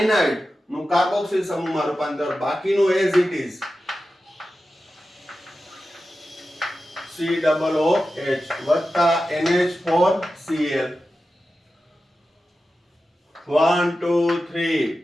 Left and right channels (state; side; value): normal; both; correlation 0.93